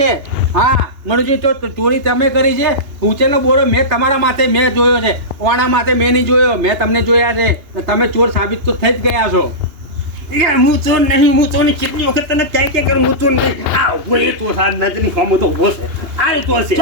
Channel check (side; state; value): left; late; 2.8 ms